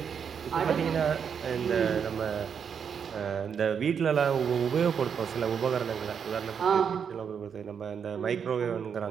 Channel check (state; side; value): quieter; left; 7.1 dB